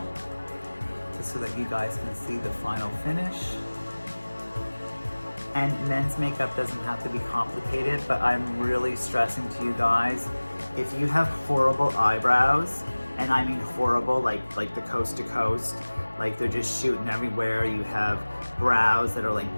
just so that you guys can see the final finish. And men's makeup doesn't have to be complicated, but I'm really stressing to you guys, if you have horrible eyebrows, and I mean horrible, like the coast to coast, like they're just shooting everywhere, you have brows that are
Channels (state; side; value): inverted; both; correlation -1.00